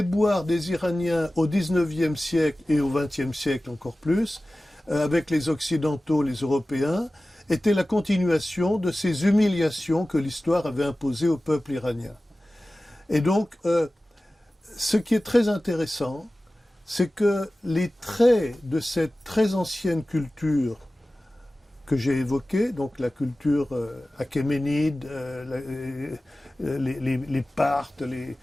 des Iraniens au XIXe siècle et au XXe siècle encore plus, avec les Occidentaux, les Européens, étaient la continuation de ces humiliations que l'histoire avait imposées au peuple iranien. Et donc, ce qui est très intéressant, c'est que les traits de cette très ancienne culture que j'ai évoquée, donc la culture achéménide, les Parthes,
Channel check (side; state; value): both; normal; correlation 0.96